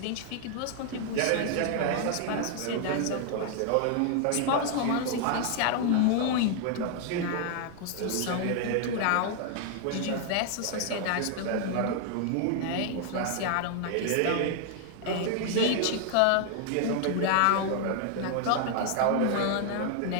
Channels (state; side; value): different; both; correlation 0.00